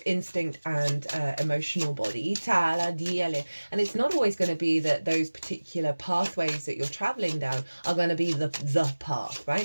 instinct and emotional body. And it's not always going to be that those particular pathways that you're traveling down are going to be the path,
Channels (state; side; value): inverted; both; correlation -1.00